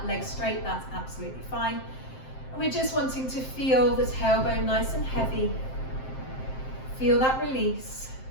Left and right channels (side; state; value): right; late; 7.6 ms